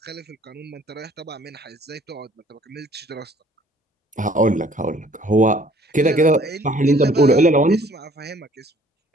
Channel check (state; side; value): normal; both; correlation 0.57